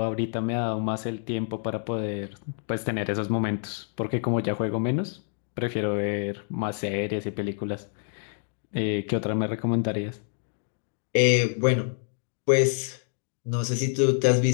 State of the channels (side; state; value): right; silent; 60 dB below the other